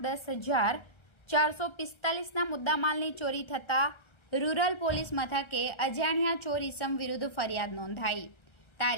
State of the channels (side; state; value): right; late; 1.3 ms